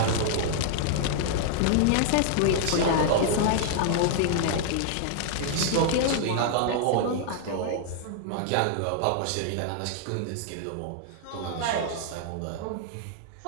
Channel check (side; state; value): both; different; correlation -0.01